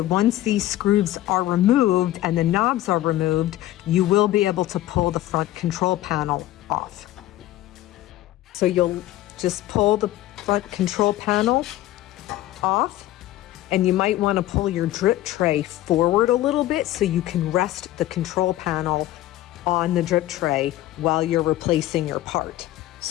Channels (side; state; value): right; quieter; 14.8 dB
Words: once these screws are removed and the knobs are removed, you will be able to pull the front control panel off. So you'll just pull the front control panel off, and you might want to pull your drip tray forward a little bit so you can rest the control panel on the drip tray while you're replacing your part.